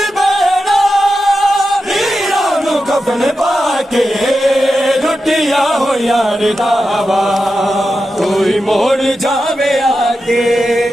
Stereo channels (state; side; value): normal; both; correlation 0.90